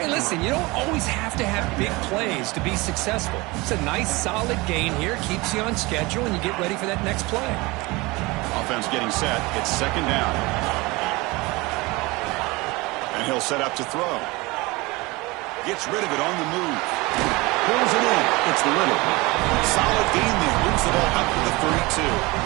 listen, you don't always have to have big plays to be successful. It's a nice, solid gain here. Keeps you on schedule, and you get ready for that next play. Offense getting set. It's 2nd down. And he'll set up to throw. Gets rid of it on the move. Pulls it in. It's Little. Solid gain there. Moves the ball up to the 32.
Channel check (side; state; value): left; quieter; 23.4 dB